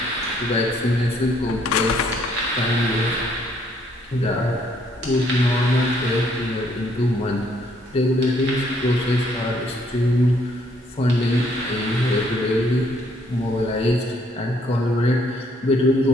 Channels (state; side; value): normal; both; correlation 0.67